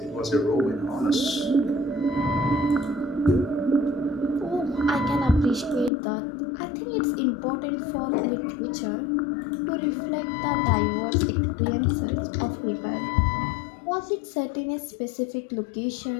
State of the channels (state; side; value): drops out; right; at 5.9 s